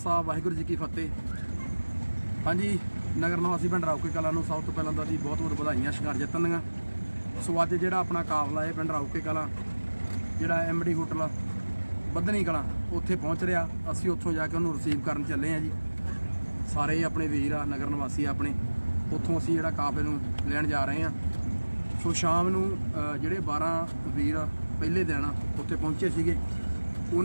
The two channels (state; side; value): inverted; both; correlation -1.00